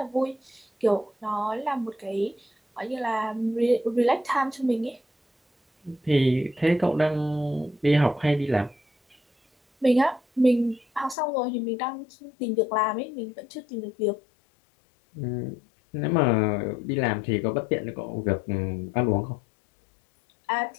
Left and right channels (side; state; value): right; drops out; at 11.2 s